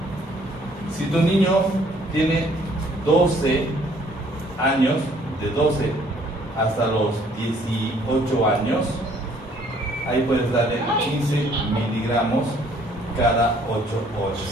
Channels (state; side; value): normal; both; correlation 0.61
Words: Si tu niño tiene 12 años, de 12 hasta los 18 años, ahí puedes darle 15 miligramos cada 8